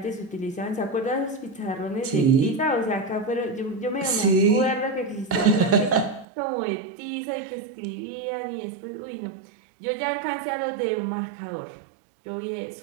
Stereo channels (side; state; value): left; drops out; at 6.2 s